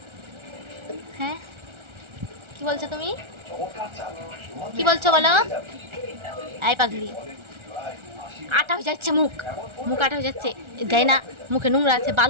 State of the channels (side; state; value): left; late; 1.4 ms